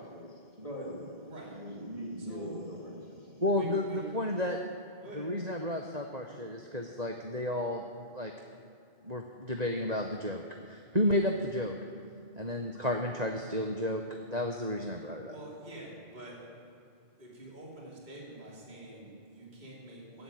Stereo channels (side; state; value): left; late; 1.9 ms